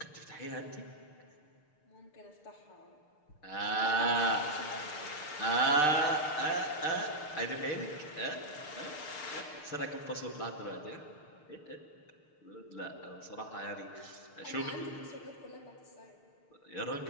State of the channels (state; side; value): late; right; 6.6 ms